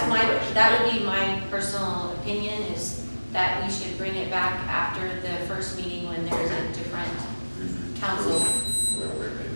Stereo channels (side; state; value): both; inverted; correlation -1.00